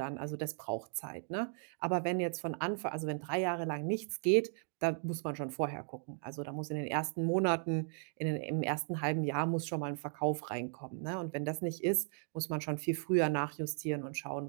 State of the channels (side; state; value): left; silent; 54 dB below the other